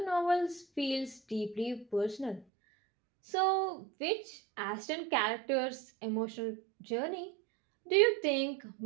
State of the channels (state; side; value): drops out; left; at 2.5 s